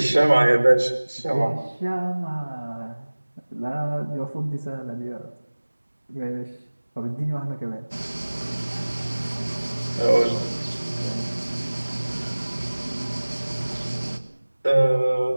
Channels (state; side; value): inverted; both; correlation -1.00